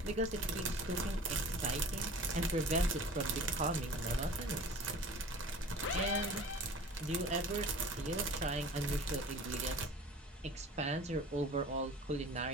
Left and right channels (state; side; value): normal; both; correlation 0.42